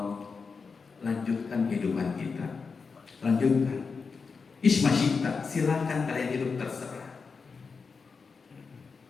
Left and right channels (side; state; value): right; quieter; 5.0 dB